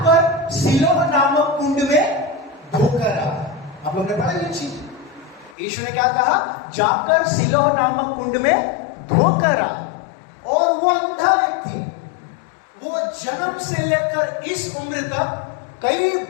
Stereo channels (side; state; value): right; drops out; at 5.6 s